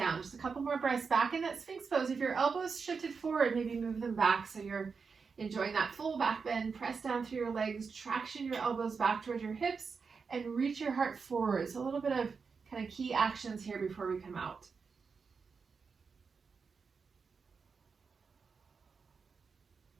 Just a couple more breaths back in that Sphinx pose. If your elbows shifted forward, maybe move them back so you're enjoying that full back bend. Press down through your legs, traction your elbows back towards your hips, and reach your heart forward. So a little bit of kind of key actions here before we come out.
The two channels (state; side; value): quieter; left; 5.3 dB